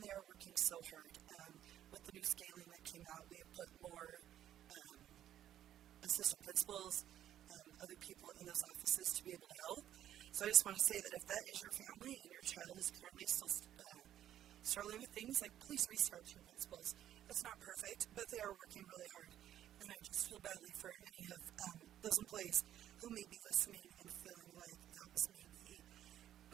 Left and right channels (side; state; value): left; quieter; 11.4 dB